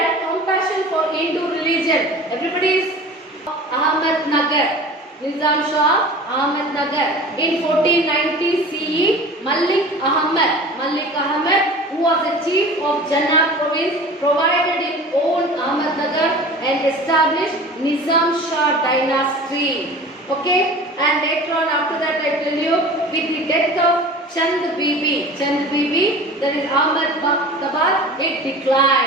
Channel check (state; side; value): normal; both; correlation 0.39